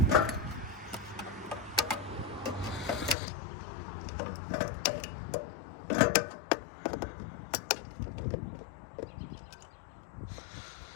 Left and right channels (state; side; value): drops out; right; at 3.2 s